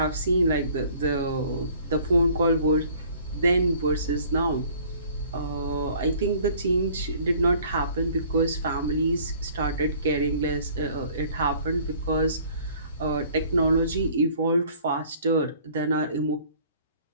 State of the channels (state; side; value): inverted; both; correlation -0.54